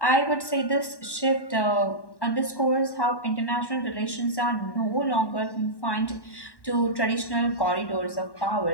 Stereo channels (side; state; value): right; late; 1.1 ms